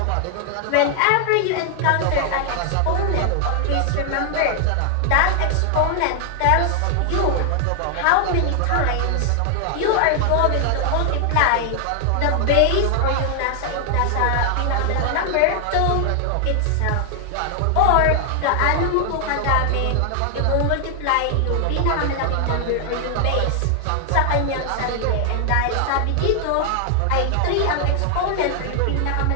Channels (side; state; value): both; different; correlation 0.00